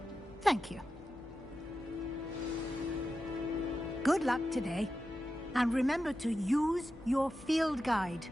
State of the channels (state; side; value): noise; left; hum, 22 dB below the sound